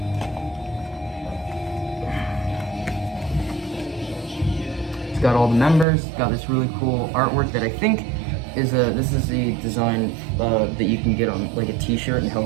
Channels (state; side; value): drops out; left; at 5.9 s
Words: It's got all the members, got this really cool artwork that I think is this is the design that you can get on like a t-shirt in